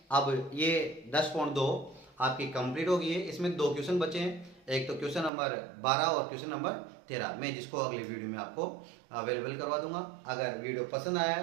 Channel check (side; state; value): left; drops out; at 5.3 s